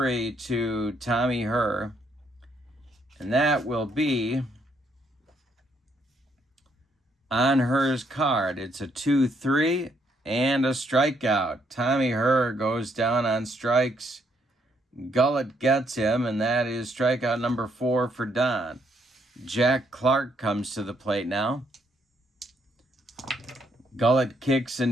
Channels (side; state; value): both; normal; correlation 0.72